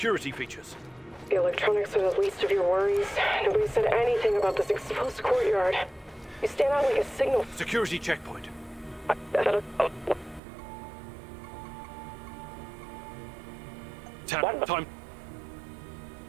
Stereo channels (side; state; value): left; drops out; at 10.4 s